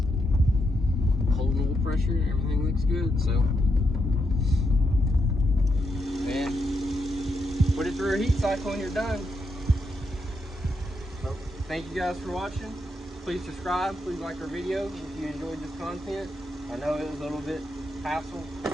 holding oil pressure and everything looks good. So, and put it through a heat cycle and you're done. So, thank you guys for watching. Please subscribe. Please like our video if you enjoyed this content. I know it was a little bit hassle.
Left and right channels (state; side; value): normal; both; correlation 0.81